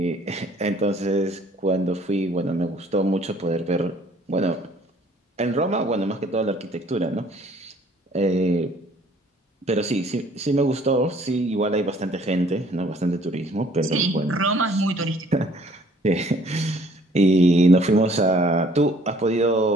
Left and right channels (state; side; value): normal; both; correlation 0.58